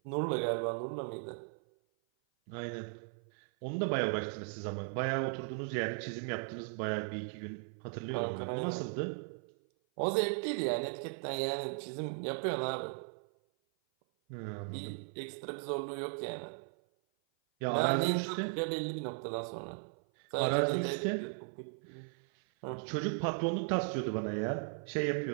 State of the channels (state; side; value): silent; left; 53 dB below the other